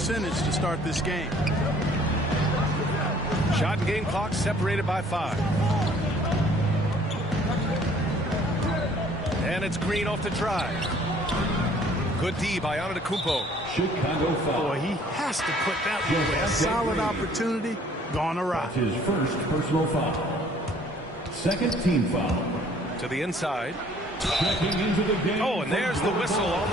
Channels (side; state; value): both; normal; correlation 0.57